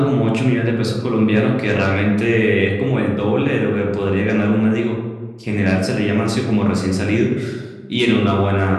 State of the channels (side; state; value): both; identical; correlation 1.00